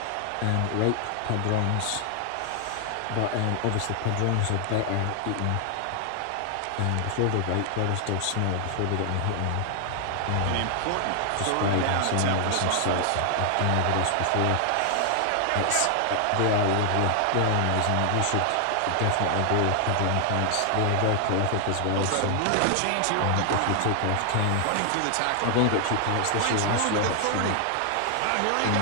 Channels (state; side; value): different; both; correlation 0.00